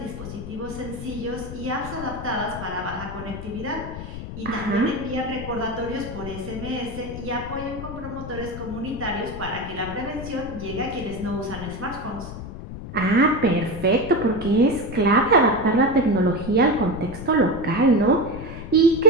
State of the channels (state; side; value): noise; left; rumble, 10 dB below the sound